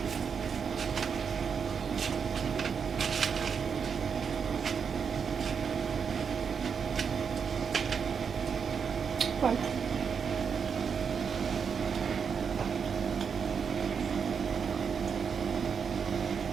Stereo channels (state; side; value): quieter; left; 6.4 dB